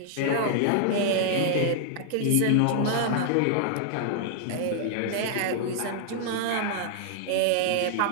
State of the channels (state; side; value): different; both; correlation -0.01